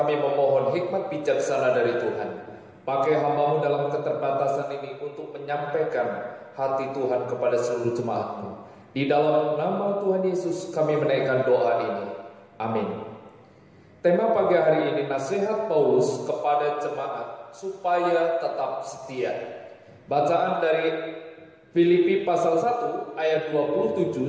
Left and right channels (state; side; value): identical; both; correlation 1.00